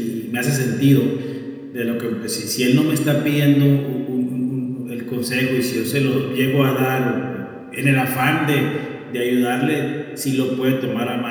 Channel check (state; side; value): identical; both; correlation 1.00